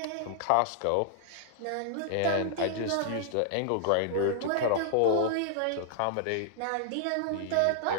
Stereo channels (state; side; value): different; both; correlation -0.01